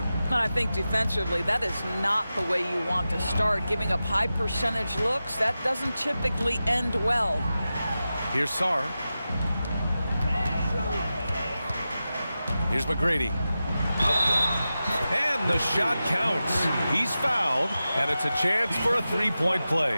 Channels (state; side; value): inverted; both; correlation -0.93